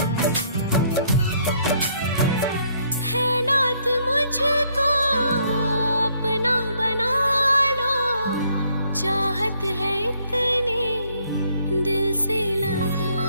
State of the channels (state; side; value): inverted; both; correlation -0.68